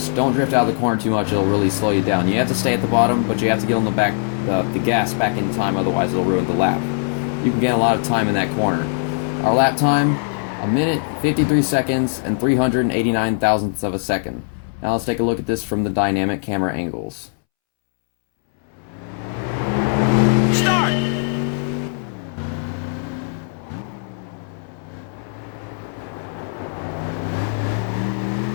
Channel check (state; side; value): silent; right; 65 dB below the other